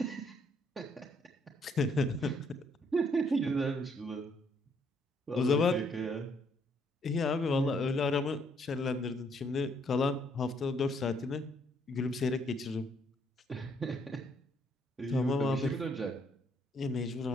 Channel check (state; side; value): normal; both; correlation 0.69